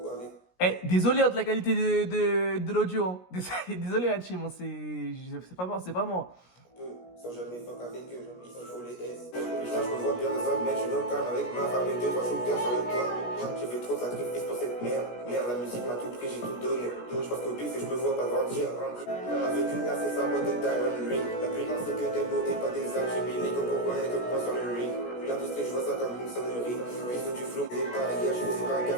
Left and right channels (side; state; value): right; late; 17 ms